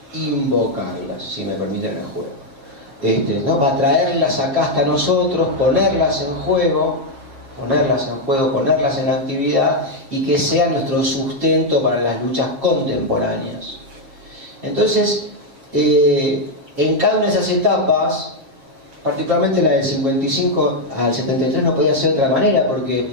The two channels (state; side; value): late; left; 7.4 ms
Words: invocarlas, si me permiten el juego. ¿No? Para traerlas acá hasta nosotros, ponerlas en juego, ponerlas en actividad y que sea nuestro sustento para las luchas contemporáneas. Entonces, en cada una de esas etapas, particularmente la del 55 al 73, no podía ser de otra manera,